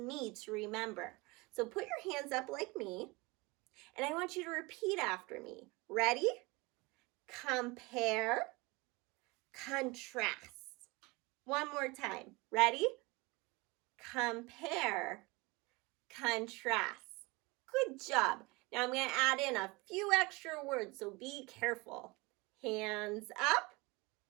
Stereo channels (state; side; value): quieter; left; 24.7 dB